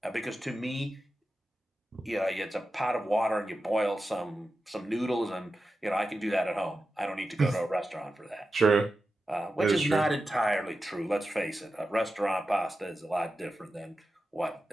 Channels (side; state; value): both; normal; correlation 0.92